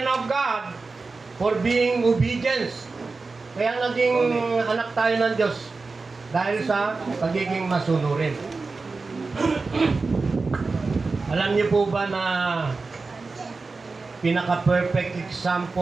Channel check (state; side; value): quieter; left; 4.0 dB